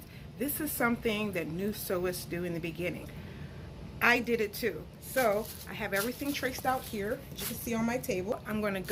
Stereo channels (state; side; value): identical; both; correlation 1.00